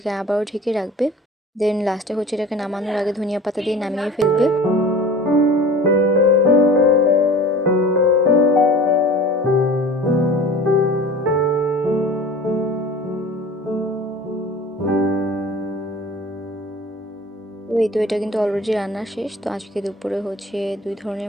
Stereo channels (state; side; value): normal; both; correlation 0.40